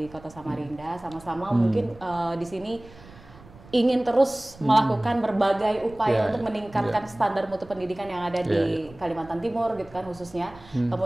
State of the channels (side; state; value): right; noise; rumble, 22 dB below the sound